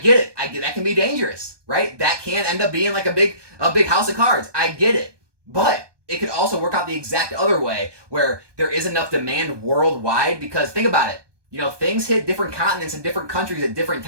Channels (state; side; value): late; left; 1.2 ms